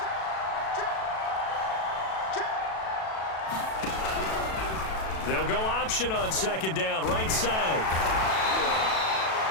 They'll go option on second down, right side.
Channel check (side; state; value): right; late; 37 ms